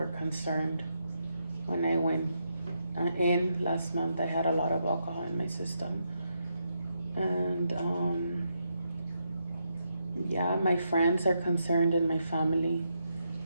concerned when I went in last month. I had a lot of alcohol in my system, and yeah, my friends are concerned and my family,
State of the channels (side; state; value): both; inverted; correlation -0.81